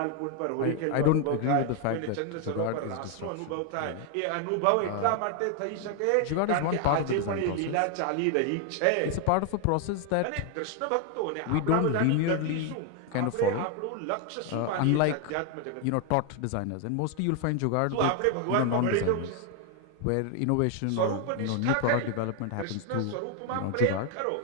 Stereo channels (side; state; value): both; different; correlation 0.00